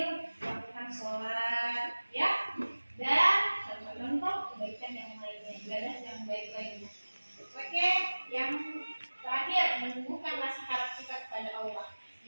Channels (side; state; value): both; inverted; correlation -1.00